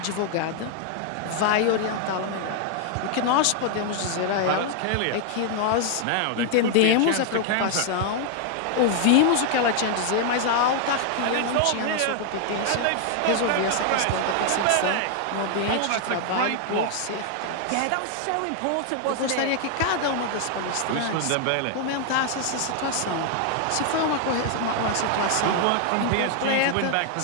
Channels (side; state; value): both; different; correlation 0.00